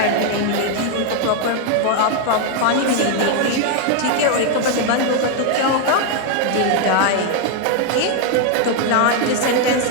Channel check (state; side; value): different; both; correlation 0.00